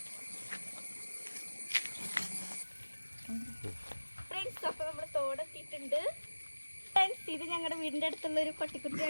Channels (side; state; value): both; inverted; correlation -1.00